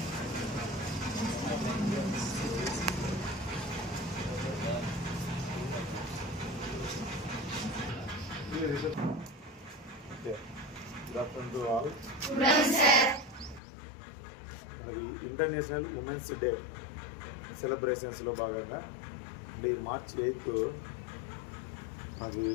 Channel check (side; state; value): right; drops out; at 13.6 s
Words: afternoon to all. International women's day సెలబ్రేషన్స్లో భాగంగా March 8 మనకి